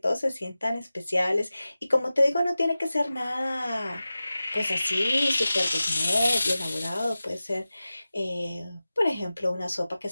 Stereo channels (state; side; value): inverted; both; correlation -0.96